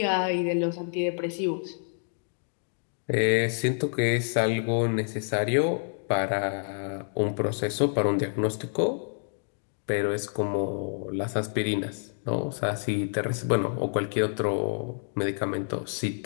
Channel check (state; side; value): silent; right; digital silence